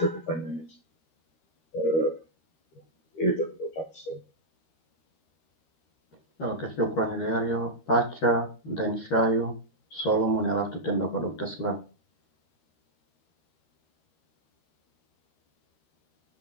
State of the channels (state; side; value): late; right; 13 ms